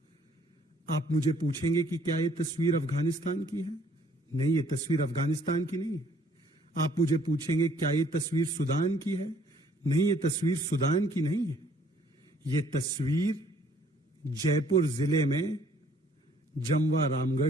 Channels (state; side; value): normal; both; correlation 0.61